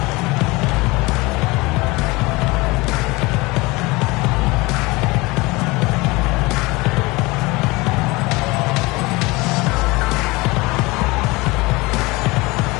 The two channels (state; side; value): quieter; right; 23.4 dB